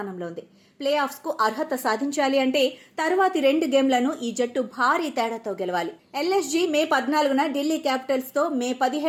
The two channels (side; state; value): both; identical; correlation 1.00